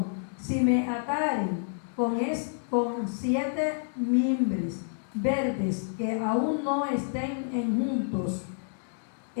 si me ataren con 7 mimbres verdes que aún no estén juntos,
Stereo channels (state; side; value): silent; right; digital silence